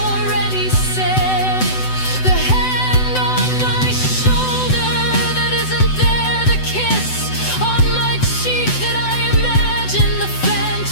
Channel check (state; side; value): late; right; 7.9 ms